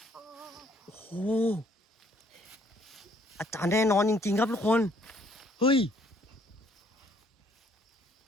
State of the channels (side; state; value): both; normal; correlation 0.64